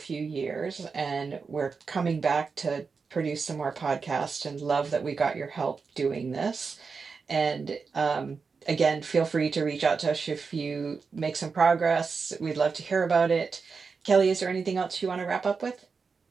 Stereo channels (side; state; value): left; quieter; 5.0 dB